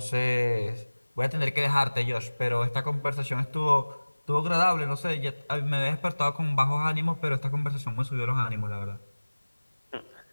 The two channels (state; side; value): inverted; both; correlation -1.00